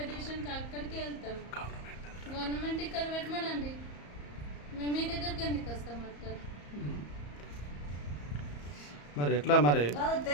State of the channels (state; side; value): late; right; 34 ms